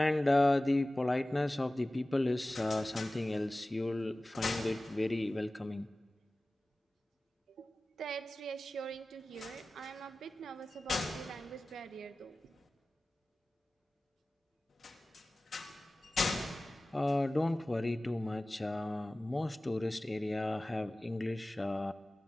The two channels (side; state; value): both; normal; correlation 0.97